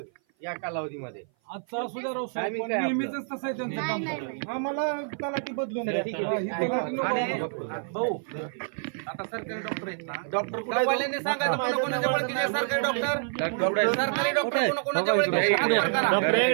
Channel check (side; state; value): left; silent; 56 dB below the other